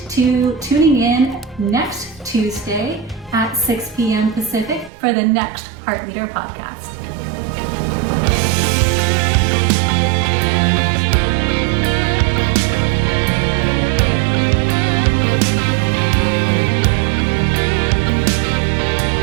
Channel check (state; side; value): drops out; left; at 4.9 s